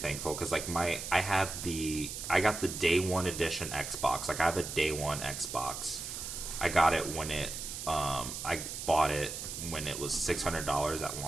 because, like, I got the day one edition Xbox. Like, I have a day one Xbox. I got it when I bought it when it was $600 at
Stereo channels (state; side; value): noise; right; hiss, 7 dB below the sound